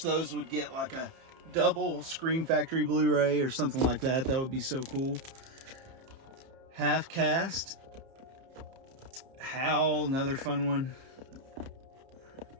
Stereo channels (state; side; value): late; left; 30 ms